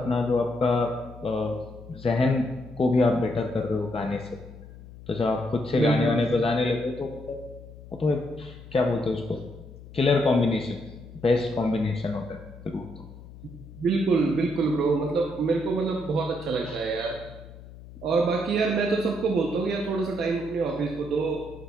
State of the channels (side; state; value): left; noise; hum, 17 dB below the sound